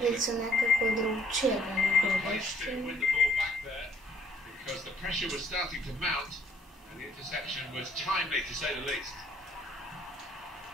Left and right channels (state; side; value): normal; both; correlation 0.65